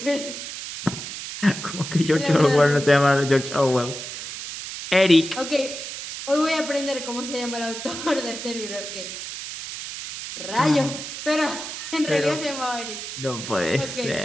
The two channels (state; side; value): noise; right; hiss, 8 dB below the sound